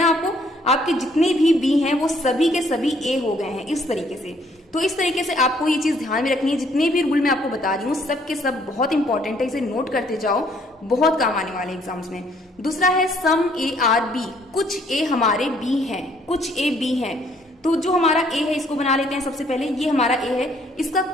आपको, आपके जितने भी बी हैं वो सभी के सभी ए हो गए हैं इस तरीके से। तो इस तरीके से आपको ये चीज ध्यान में रखनी है। जितने भी रूल मैं आपको बता रही हूँ सब के सब बहुत इंपॉर्टेंट है, इसे नोट करते जाओ, बहुत काम आने वाले एग्जाम्स में। दूसरा है सम ए आर बी। कुछ ए हमारे बी हैं, कुछ ए बी हैं। तो जो हमारा ए है इसको बना लेते हैं सबसे पहले। ये हमारा ए है, इसका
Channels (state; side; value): normal; both; correlation 0.64